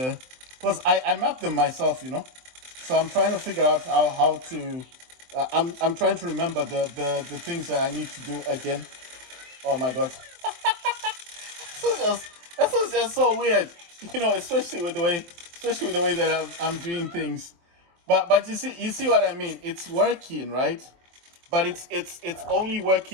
I mapped them myself, so I'm trying to figure out how to I'm trying to remember the things that I need to do again. Oh my god. This is just so weird, especially with the way that I'm doing things. But you see what I mean? It's working, right? But it's only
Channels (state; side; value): late; left; 23 ms